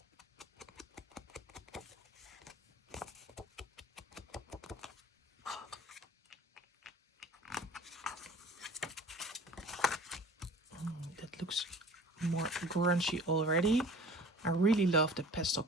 That looks more grungy already. I really love the pastel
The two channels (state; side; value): normal; both; correlation 0.44